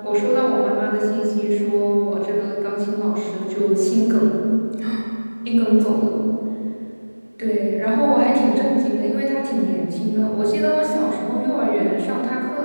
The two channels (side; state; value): both; inverted; correlation -1.00